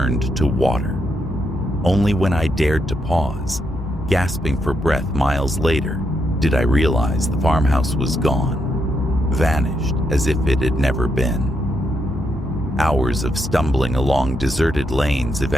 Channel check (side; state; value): both; normal; correlation 0.80